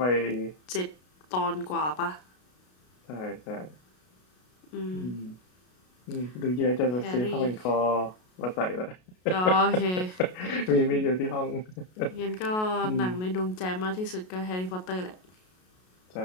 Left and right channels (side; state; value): right; late; 33 ms